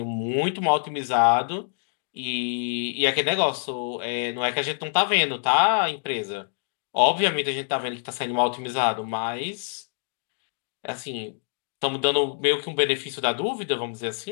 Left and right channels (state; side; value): silent; right; digital silence